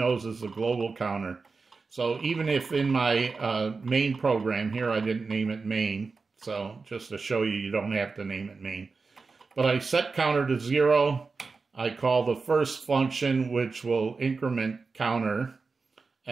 is the global counter. So even if in my main program here, I didn't name it main, so just to show you, you don't have to name it main. But I set counter to 0. I call the first function, which will increment counter,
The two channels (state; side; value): quieter; left; 4.4 dB